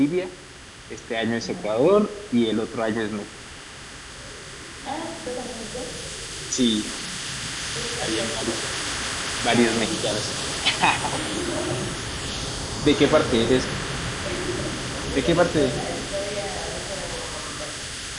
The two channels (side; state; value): both; identical; correlation 1.00